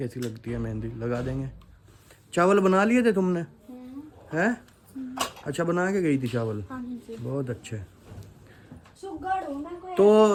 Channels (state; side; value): identical; both; correlation 1.00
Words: लगती है मेहंदी, लगा देंगे। चावल बना लिए थे तुमने? हैं? अच्छा बना के गई थी चावल? बहुत अच्छे।